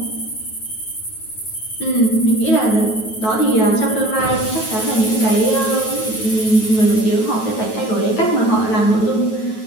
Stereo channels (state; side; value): late; right; 9.2 ms